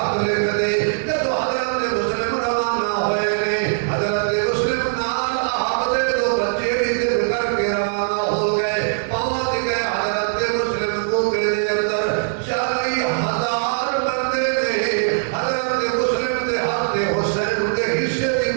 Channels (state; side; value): silent; left; digital silence